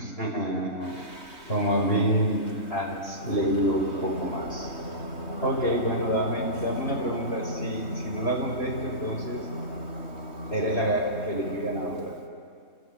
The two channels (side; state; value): right; late; 3.2 ms